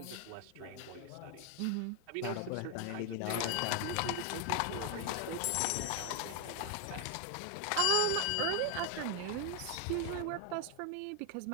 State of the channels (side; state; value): both; different; correlation 0.00